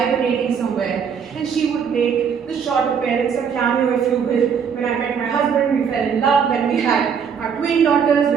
somewhere, and she would make the short appearance, a cameo if you will. When I met my husband, we fell in love. When we had our twin daughters,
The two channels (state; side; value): quieter; left; 7.0 dB